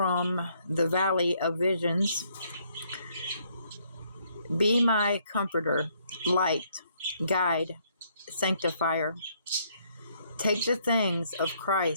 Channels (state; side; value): inverted; both; correlation -0.69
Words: the Valley of Visions. Be my comforter, light, guide, sanctifier. Take the things of